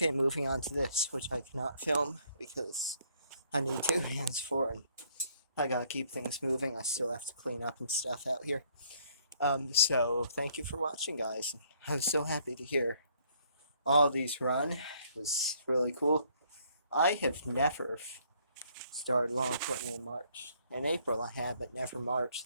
moving on to this, which I cannot film because I need 2 hands for it. I gotta keep things moving. I still have to clean up and stuff out here. So thank you for watching, guys. I was so happy to hear all of these run. It was really cool. I have never started lawn equipment in March. In April I have, but never March.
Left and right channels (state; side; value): inverted; both; correlation -0.65